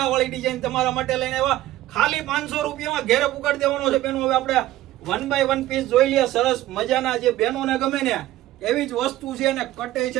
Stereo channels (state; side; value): quieter; left; 15.0 dB